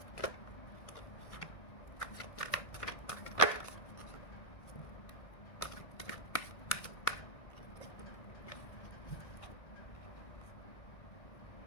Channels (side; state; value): right; late; 1.6 ms